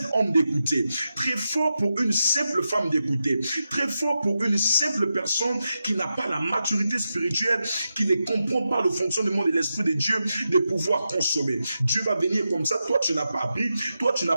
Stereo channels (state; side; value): inverted; both; correlation -0.89